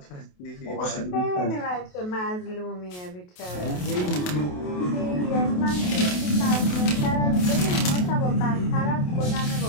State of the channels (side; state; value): right; late; 28 ms